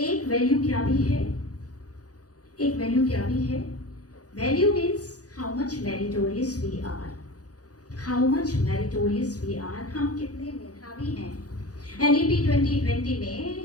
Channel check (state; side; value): late; right; 0.67 ms